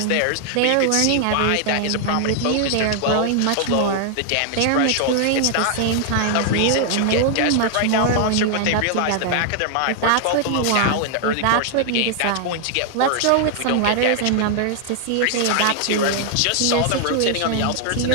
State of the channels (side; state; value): both; different; correlation 0.00